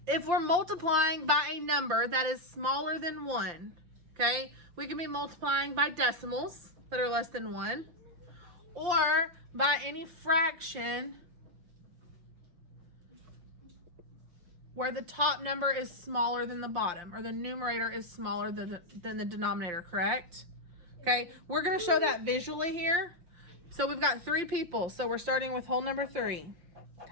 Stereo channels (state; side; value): late; left; 5.7 ms